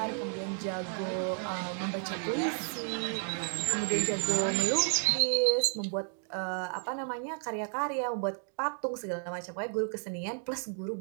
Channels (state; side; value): silent; left; 56 dB below the other